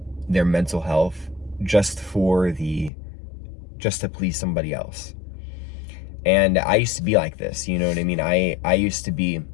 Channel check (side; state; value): right; drops out; at 2.9 s